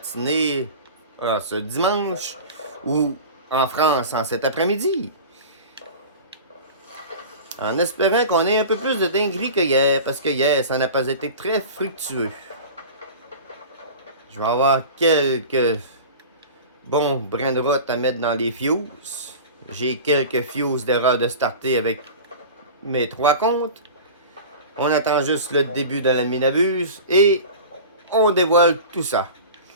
ce dimanche, ou en France en cet après-midi. En espérant qu'on ait un peu plus de dinguerie que hier, parce que hier, ça n'a pas été très fructueux. Je vais avoir quelques bons brins de route à mettre dans les fuses. J'ai quelques fuses d'erreur de starter avec mes 3 comptes. On attend juste le début de la minabuse et on dévoile tout ça.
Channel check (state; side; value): inverted; both; correlation -0.35